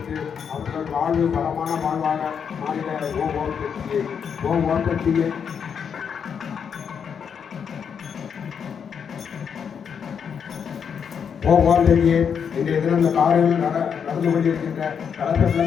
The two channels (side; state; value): right; quieter; 7.1 dB